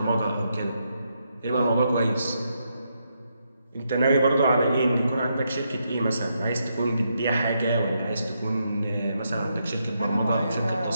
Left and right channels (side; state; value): both; inverted; correlation -0.80